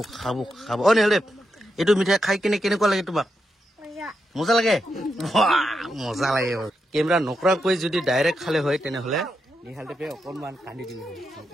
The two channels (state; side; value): normal; both; correlation 0.85